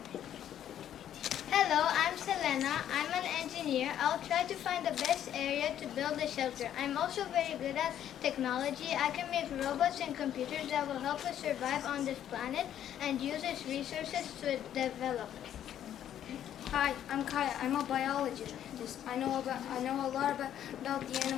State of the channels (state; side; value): quieter; right; 10.6 dB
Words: Hello, I'm Selena. I'm an engineer. I'll try to find the best area to build a shelter. I'm also very good at technology. I can make robots and computers that will help us survive on this planet and use its resources to develop. Hi, I'm Kaya. I'm a biologist. I know a lot about the